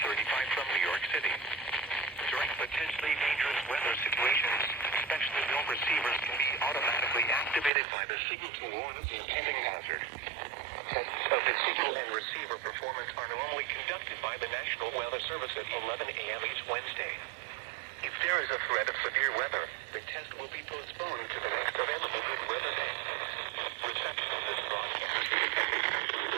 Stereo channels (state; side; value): drops out; left; at 7.7 s